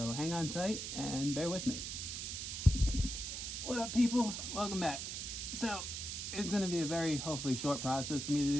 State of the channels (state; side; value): noise; right; hiss, 5 dB below the sound